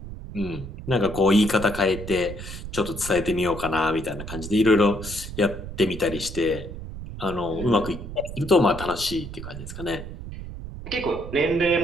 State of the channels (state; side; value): noise; right; rumble, 10 dB below the sound